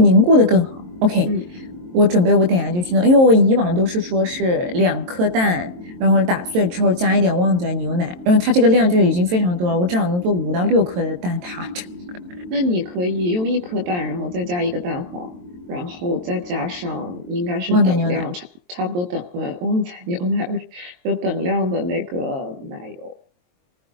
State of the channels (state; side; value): late; left; 23 ms